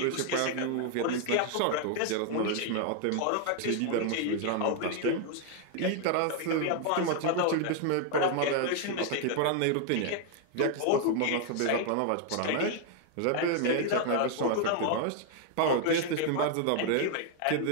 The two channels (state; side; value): different; both; correlation 0.00